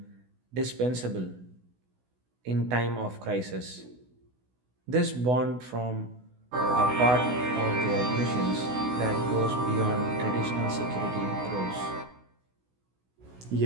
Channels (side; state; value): left; late; 16 ms